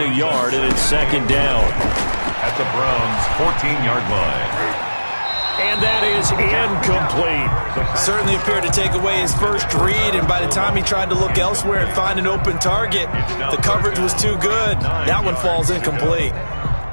a yard, and it's second down. At the Browns' 14-yard line. And that is incomplete. Certainly appeared to take away his first read, and by the time he tried to look elsewhere and find an open target, the coverage was too good. That one falls incomplete.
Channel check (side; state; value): both; inverted; correlation -1.00